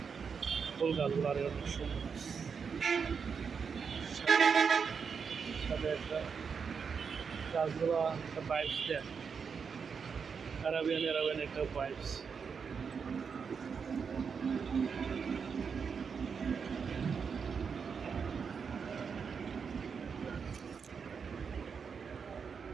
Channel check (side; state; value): left; quieter; 6.1 dB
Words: ফুল গাছগুলো আর অনেক সুন্দর। সাথে একটা গাছগুলো একটা বাইকস দেয়, অ্যারাবিয়ান একটা বাইকস।